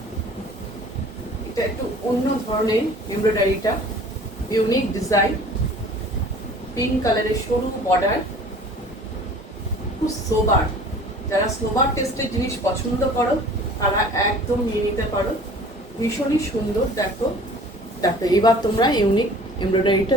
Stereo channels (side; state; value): both; normal; correlation 0.47